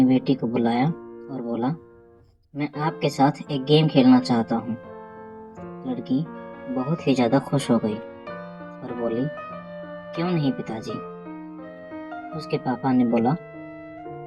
बेटी को बुलाया और बोला, मैं आपके साथ एक गेम खेलना चाहता हूँ। लड़की बहुत ही ज़्यादा खुश हो गई और बोली, क्यों नहीं पिताजी। उसके पापा ने बोला,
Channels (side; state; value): both; identical; correlation 1.00